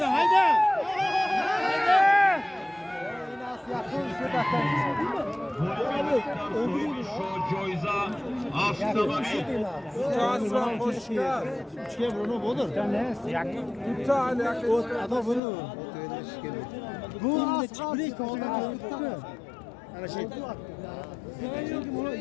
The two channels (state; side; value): drops out; right; at 15.4 s